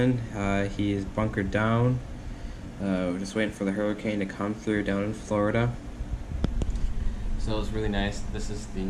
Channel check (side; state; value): both; identical; correlation 1.00